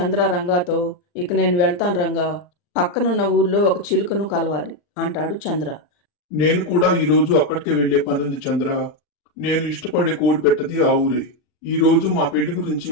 రంగాతో, ఇక నేను వెళ్తాను రంగా, పక్కనున్న ఊర్లో ఒక చిలుకను కలవాలి అంటాడు చంద్ర. నేను కూడా ఈ రోజు అక్కడికే వెళ్లే పనుంది చంద్ర. నేను ఇష్టపడే కోడి పెట్టది ఆ ఊరే. ఈ రోజు మా పెళ్లి గురించి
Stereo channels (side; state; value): right; late; 40 ms